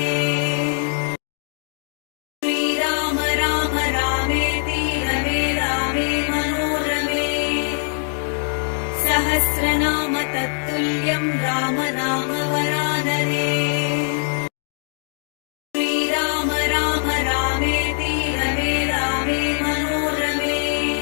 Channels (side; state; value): right; silent; digital silence